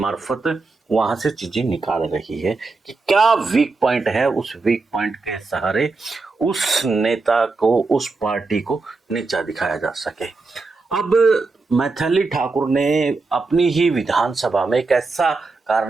वहां से चीजें निकाल रही है कि क्या वीक पॉइंट है। उस वीक पॉइंट के सहारे उस नेता को, उस पार्टी को नीचा दिखाया जा सके। अब मैथिली ठाकुर ने अपनी ही विधानसभा में एक ऐसा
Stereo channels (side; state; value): left; quieter; 3.9 dB